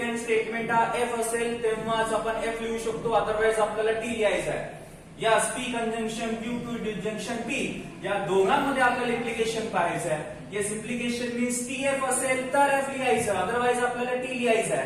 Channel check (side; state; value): both; identical; correlation 1.00